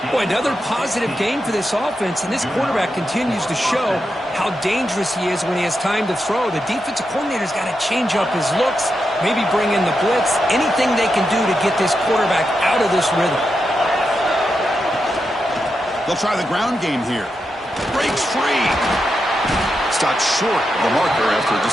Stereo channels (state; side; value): normal; both; correlation 0.86